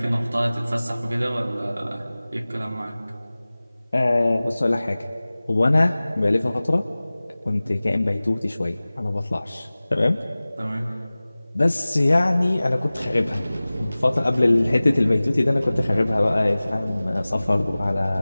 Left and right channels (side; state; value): both; inverted; correlation -0.98